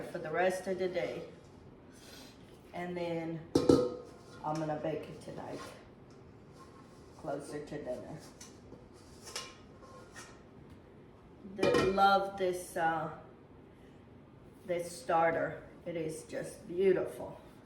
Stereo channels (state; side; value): identical; both; correlation 1.00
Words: for the rest of the day. And then I'm gonna bake it tonight, closer to dinner. Love this this starter. It is just beautiful.